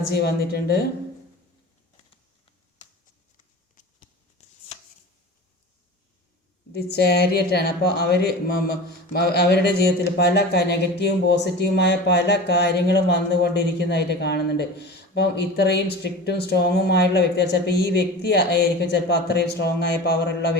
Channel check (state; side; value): normal; both; correlation 0.33